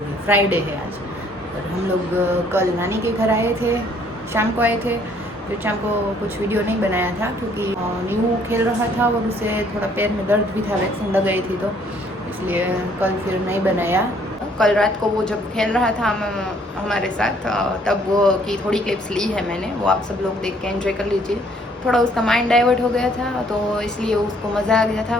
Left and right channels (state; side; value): normal; both; correlation 0.63